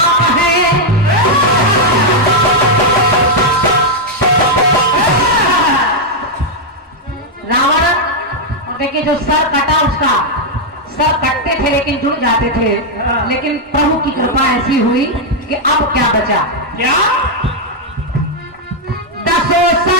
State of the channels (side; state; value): both; normal; correlation -0.01